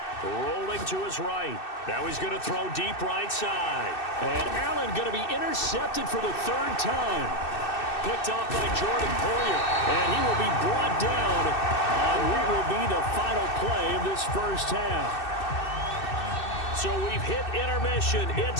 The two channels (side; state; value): right; late; 2.6 ms